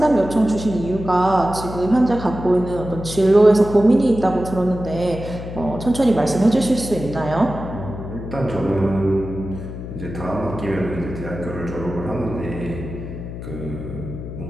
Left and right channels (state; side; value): noise; left; hum, 9 dB below the sound